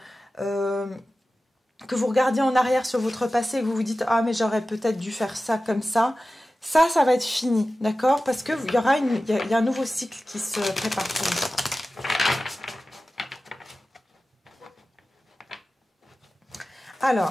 que vous regardiez en arrière sur votre passé et que vous vous dites « Ah, mais j'aurais peut-être dû faire ça comme ça », ça va être fini, d'accord? Parce que il y a un nouveau cycle qui se prépare pour vous.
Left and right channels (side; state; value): both; normal; correlation 0.95